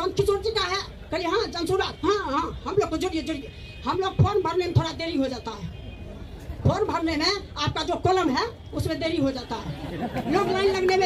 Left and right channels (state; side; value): identical; both; correlation 1.00